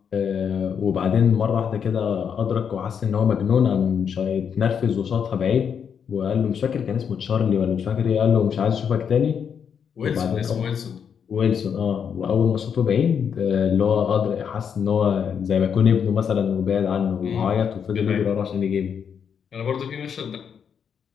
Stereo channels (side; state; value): right; quieter; 7.4 dB